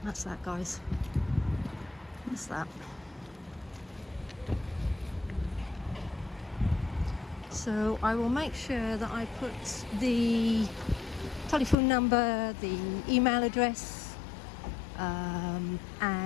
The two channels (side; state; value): right; drops out; at 11.8 s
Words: That's that, guys. That's that. So I will make sure that I put the telephone number, the email address,